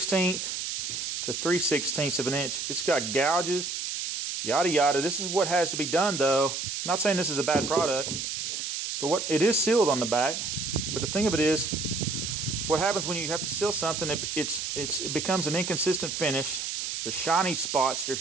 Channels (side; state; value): right; noise; hiss, 3 dB below the sound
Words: to 3/16 of an inch. It's got gouges, yada yada. This is what has to be done, though. I'm not saying this is a bad product, but it is sealed on the back. But the thing of it is, what happens when you have to seal something? It becomes an inconsistent finish. There's shiny spots.